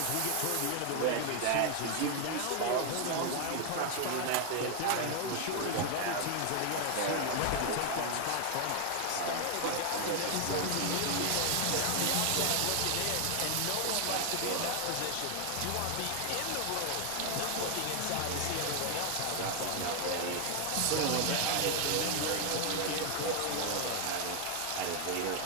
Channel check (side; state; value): both; different; correlation 0.00